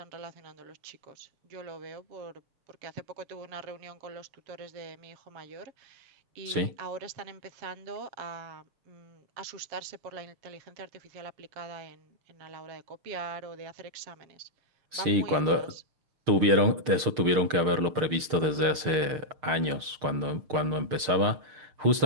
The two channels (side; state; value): left; late; 6.6 ms